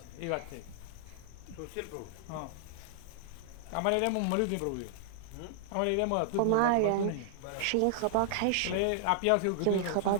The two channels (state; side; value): different; both; correlation -0.01